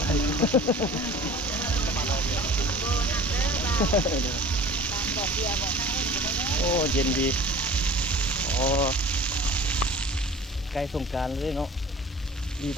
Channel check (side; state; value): both; normal; correlation 0.43